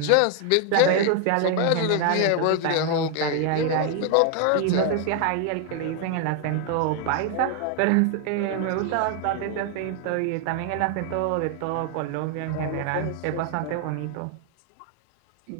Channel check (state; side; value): different; both; correlation 0.00